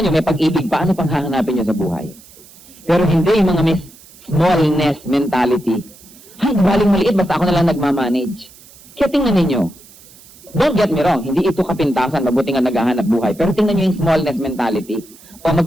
may pag-ibig pa, ano pang hahanapin nyo sa buhay? Pero hindi yung mga may smallness mentality. Ay, galing maliit, basta ako na lang nagmamanage. Kaya tingnan ninyo, don't get me wrong, hindi ito kapintasan, mabuti nga naghahanap buhay. Pero tingnan nyo yung smallness mentality. O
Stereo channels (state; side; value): noise; right; hiss, 23 dB below the sound